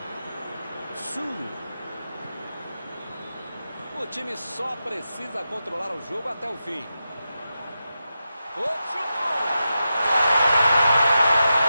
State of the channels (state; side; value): inverted; both; correlation -0.90